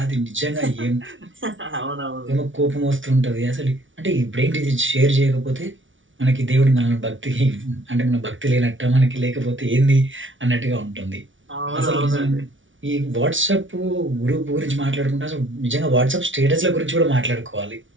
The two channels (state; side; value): late; left; 0.56 ms